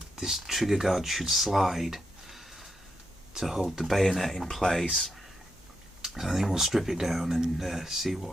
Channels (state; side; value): normal; both; correlation 0.83